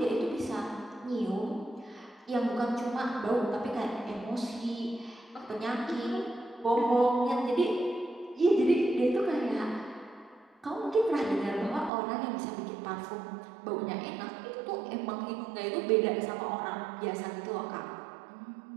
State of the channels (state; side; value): drops out; left; at 11.9 s